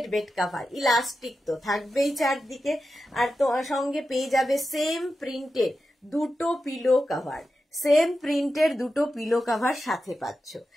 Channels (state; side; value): normal; both; correlation 0.90